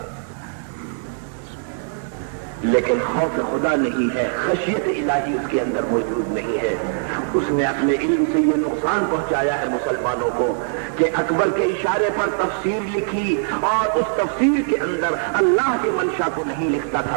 لیکن خوف خدا نہیں ہے، خشیت الہی اس کے اندر موجود نہیں ہے۔ اس نے اپنے علم سے یہ نقصان پہنچایا ہے مسلمانوں کو کہ اکبر کے اشارے پر تفسیر لکھی، اور اس تفسیر کے اندر اللہ کے منشا کو نہیں لکھتا تھا،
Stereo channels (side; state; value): left; silent; digital silence